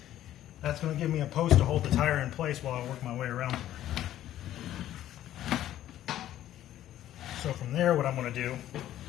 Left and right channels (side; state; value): right; quieter; 12.7 dB